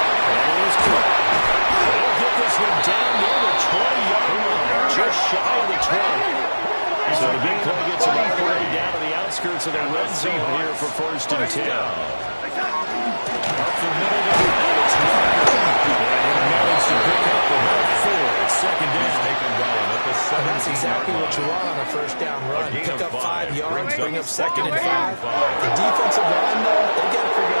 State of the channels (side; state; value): both; inverted; correlation -1.00